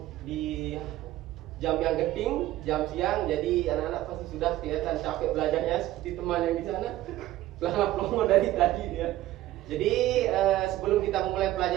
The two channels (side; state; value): left; quieter; 15.1 dB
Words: yang genting, jam siang, jadi anak-anak pasti sudah kelihatan capek belajarnya seperti teman yang di sana. Pelongo dari tadi ya. Jadi sebelum kita memulai